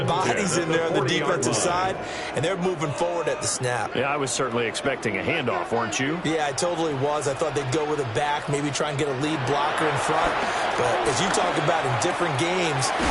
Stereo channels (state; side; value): identical; both; correlation 1.00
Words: bodies in there on the defensive side, and they're moving forward at the snap. Yeah, I was certainly expecting a handoff, weren't you? Yeah, I totally was. I thought they'd go with a back, maybe try and get a lead blocker in front. But as you talk about in different games,